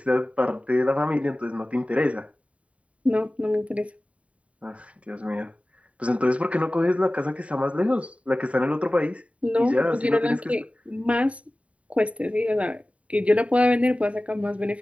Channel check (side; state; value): left; late; 0.065 ms